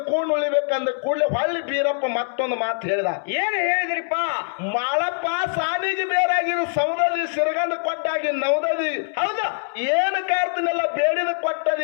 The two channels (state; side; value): silent; right; 63 dB below the other